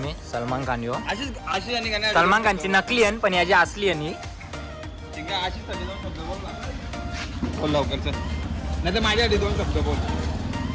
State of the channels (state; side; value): identical; both; correlation 1.00